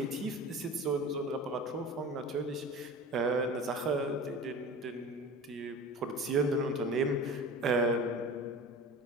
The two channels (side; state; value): both; normal; correlation 0.36